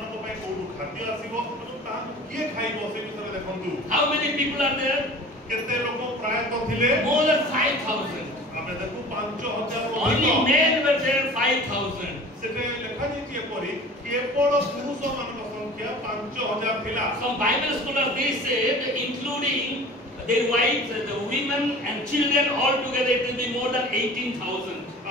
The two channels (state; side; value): normal; both; correlation 0.42